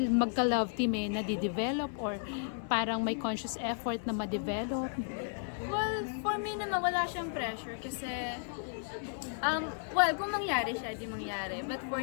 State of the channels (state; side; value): silent; right; digital silence